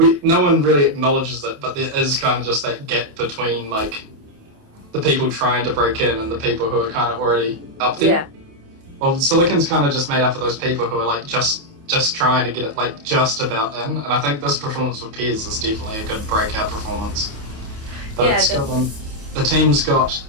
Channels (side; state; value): left; late; 28 ms